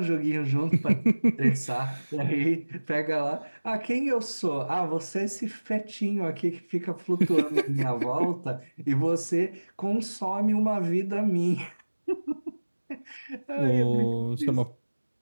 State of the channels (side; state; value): both; inverted; correlation -1.00